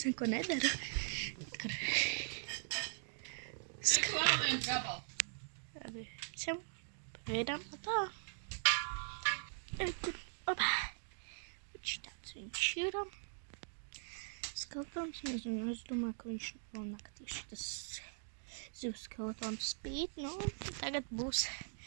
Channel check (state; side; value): silent; left; digital silence